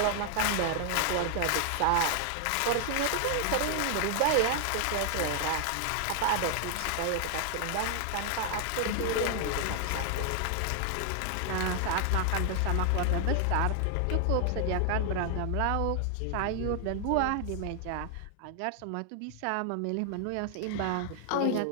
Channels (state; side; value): different; both; correlation 0.00